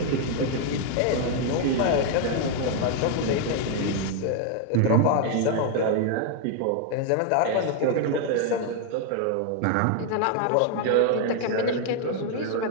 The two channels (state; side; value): different; both; correlation 0.00